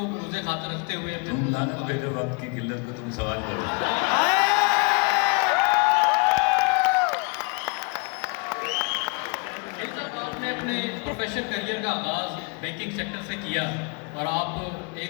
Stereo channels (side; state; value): right; quieter; 34.1 dB